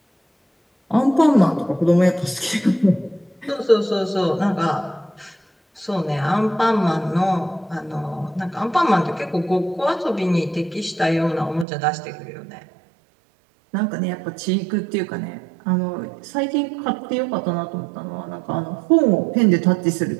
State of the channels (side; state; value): left; drops out; at 11.7 s